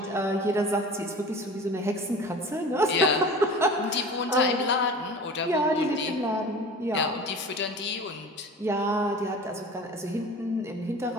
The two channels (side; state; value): both; normal; correlation 0.38